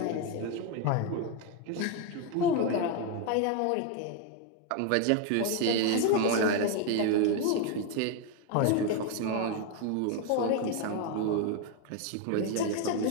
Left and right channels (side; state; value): both; different; correlation 0.01